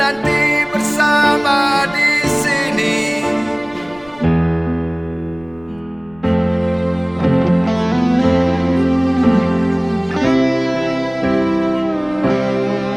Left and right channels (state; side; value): noise; left; rumble, 27 dB below the sound